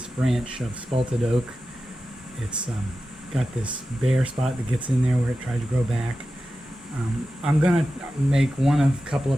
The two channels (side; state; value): both; normal; correlation 0.93